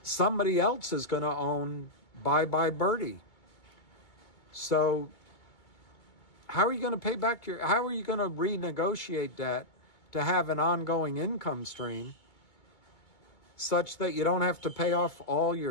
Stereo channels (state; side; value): late; right; 2.2 ms